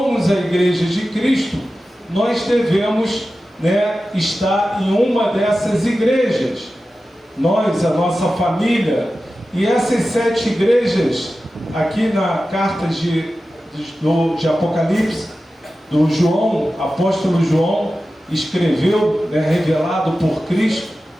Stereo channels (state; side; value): normal; both; correlation 0.94